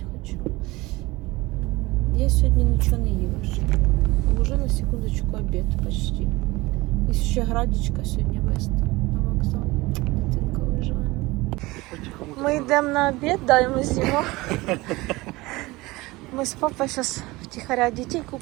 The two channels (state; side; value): quieter; left; 21.0 dB